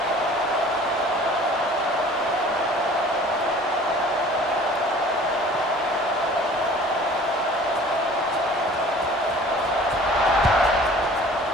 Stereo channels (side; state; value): both; normal; correlation 0.48